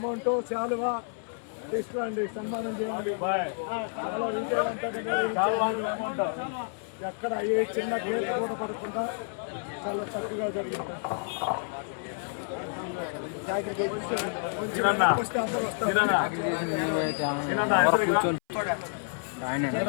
శాలువా తీసుకురండి, సన్మానం చేయండి. చాలా విజయవంతంగా నిర్వహించారు మెమోంటో. ఎక్కడ ఏ చిన్న గేట్ కూడా పడకుండా చాలా చక్కగా జరిగింది. అందరూ వస్తారు.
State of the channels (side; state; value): right; silent; 57 dB below the other